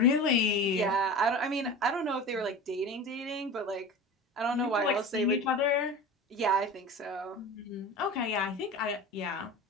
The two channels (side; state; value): both; normal; correlation 0.33